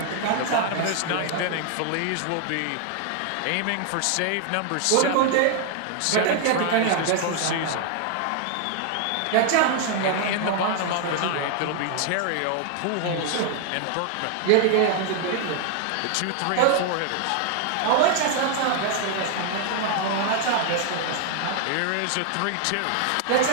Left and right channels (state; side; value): different; both; correlation 0.00